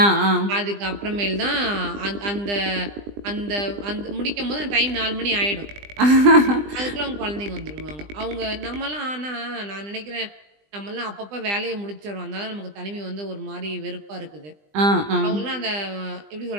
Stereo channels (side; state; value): left; late; 20 ms